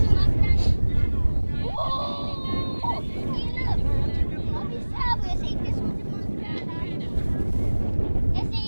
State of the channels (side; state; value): both; inverted; correlation -1.00